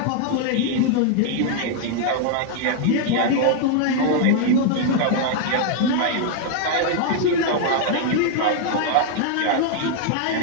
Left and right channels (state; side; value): different; both; correlation 0.00